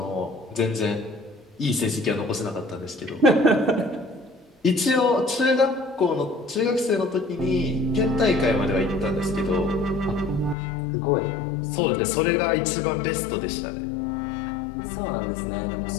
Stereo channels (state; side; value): drops out; right; at 10.6 s